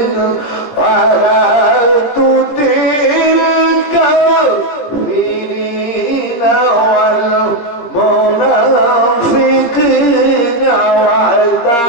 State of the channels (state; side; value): late; right; 17 ms